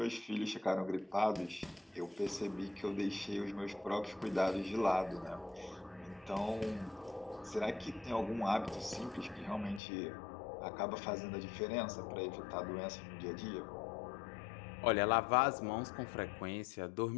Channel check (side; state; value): right; drops out; at 9.8 s